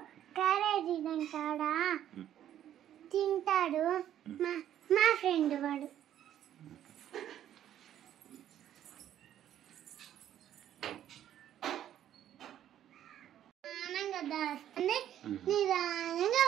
క్యారేజీ తింటాడా తింటాడు. మా ఫ్రెండ్ వాడు ఆనంగా దాస్తుంది, నిదానంగా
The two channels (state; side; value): quieter; left; 11.1 dB